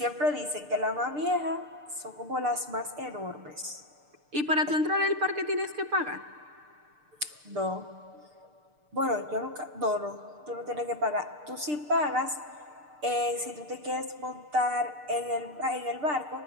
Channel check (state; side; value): late; left; 6.7 ms